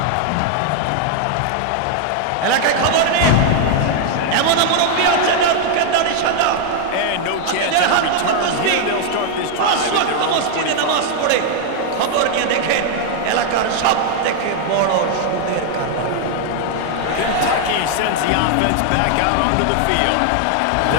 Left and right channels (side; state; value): both; different; correlation 0.00